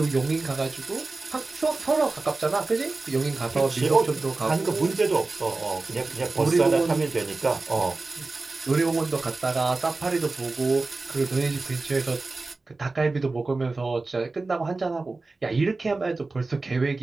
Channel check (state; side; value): quieter; left; 3.5 dB